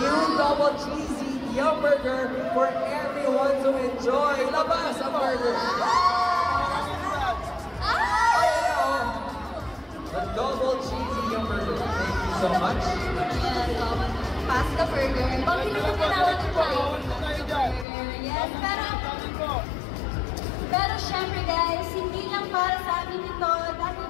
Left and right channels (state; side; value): drops out; right; at 17.9 s